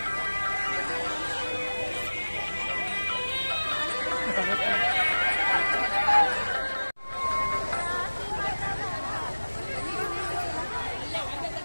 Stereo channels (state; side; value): inverted; both; correlation -1.00